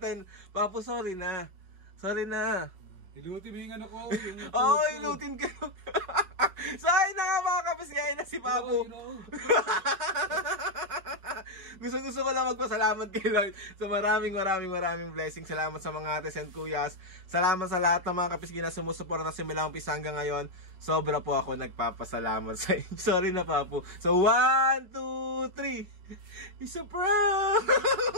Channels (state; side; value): late; left; 5.3 ms